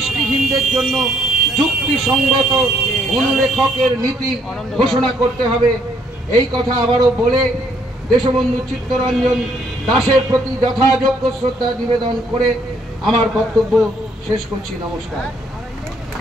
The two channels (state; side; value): normal; both; correlation 0.67